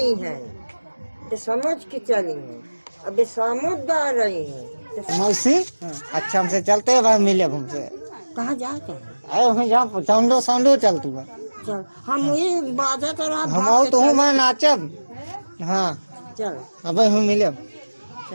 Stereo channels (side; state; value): both; inverted; correlation -1.00